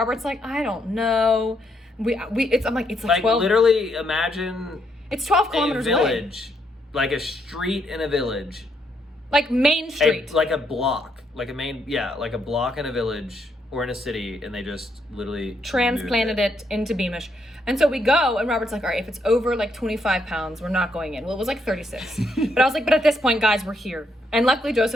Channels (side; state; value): both; normal; correlation 0.75